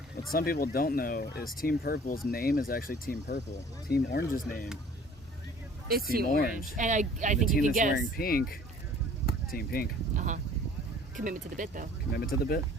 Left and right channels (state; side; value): normal; both; correlation 0.51